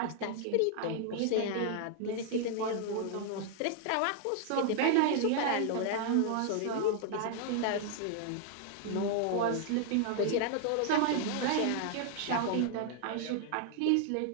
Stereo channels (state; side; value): different; both; correlation 0.00